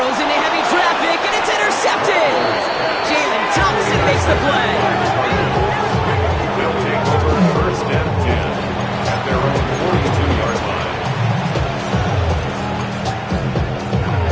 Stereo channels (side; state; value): both; identical; correlation 1.00